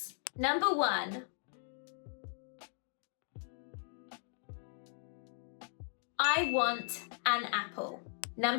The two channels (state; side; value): silent; right; 53 dB below the other